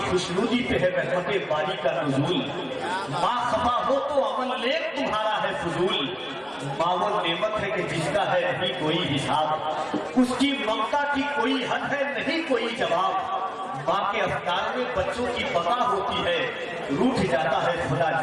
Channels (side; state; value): both; identical; correlation 1.00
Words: خوشنودی پہ ہے رحمت باری کا نزول, ماں خفا ہو تو عمل نیک تمہارا ہے فضول, ماں وہ نعمت ہے کہ جس کا ہے نہیں کوئی حساب, اس کی ممتا کی کوئی حد ہے نہیں کوئی جواب, ماں کے افکار میں بچوں کی بقا ہوتی ہے, روٹھ جاتا ہے خدا